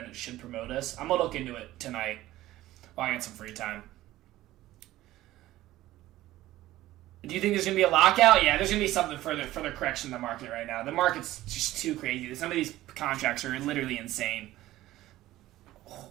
it should promote us. I'm gonna look into it tonight while I get some free time. Do you think there's gonna be a lockout? Yeah, there's gonna be something further correction in the market right now. The market's just too crazy. Some of these contracts are literally insane.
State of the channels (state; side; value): quieter; left; 15.6 dB